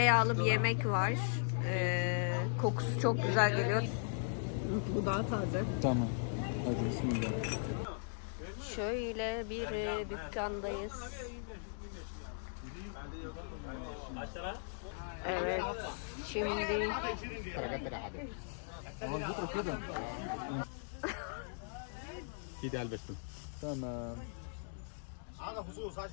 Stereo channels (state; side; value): silent; right; digital silence